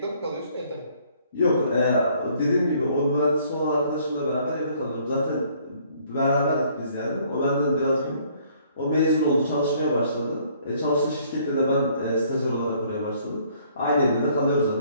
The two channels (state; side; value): inverted; both; correlation -0.62